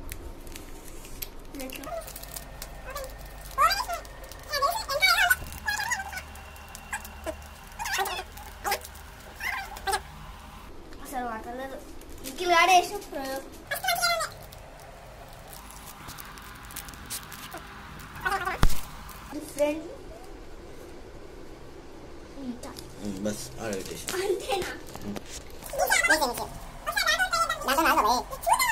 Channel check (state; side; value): identical; both; correlation 1.00